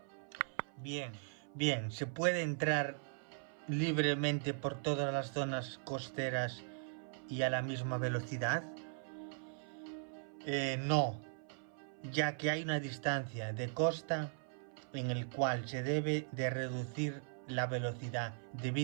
Bien, ¿se puede entrar libremente por todas las zonas costeras y a la misma velocidad? No, ya que hay una distancia de costa en el cual se debe de reducir la velocidad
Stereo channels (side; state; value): left; silent; 52 dB below the other